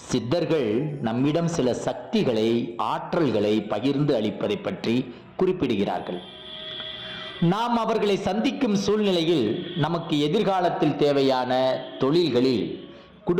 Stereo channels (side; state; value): both; identical; correlation 1.00